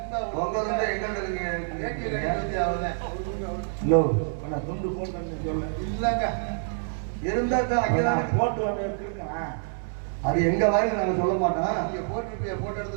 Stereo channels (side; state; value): left; silent; 60 dB below the other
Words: துண்டு போட்டு இல்லங்க இருந்தா போட்டு வந்து இருக்கேன். அது எங்க வாயில நாங்க சொல்ல மாட்டோம். நீங்க போட்டுருப்பியா? போட்ட